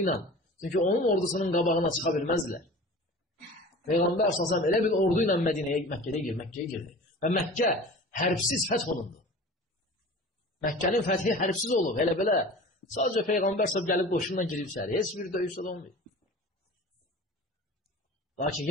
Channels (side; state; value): both; normal; correlation 0.39